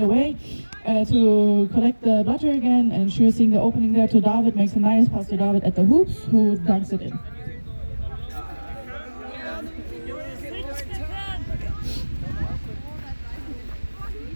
away to collect the Blatcher again. And sure seeing the opening there to David, makes a nice pass to David at the hoops, who dunks it in.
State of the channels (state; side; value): inverted; both; correlation -1.00